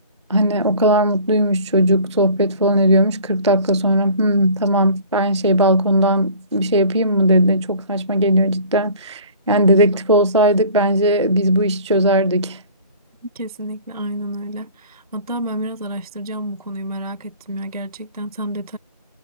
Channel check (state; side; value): inverted; both; correlation -0.47